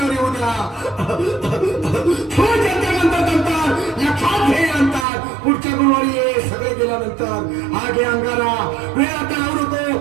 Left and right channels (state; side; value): drops out; left; at 5.1 s